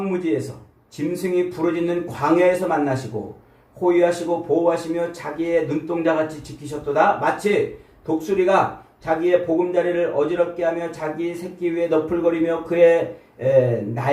짐승이 부르짖는 광야에서 만나시고 호위하시고 보호하시며 자기의 눈동자같이 지키셨도다. 마치 독수리가 자기의 보금자리를 어지럽게 하며 자기 새끼 위에 너풀거리며 그의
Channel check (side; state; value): both; identical; correlation 1.00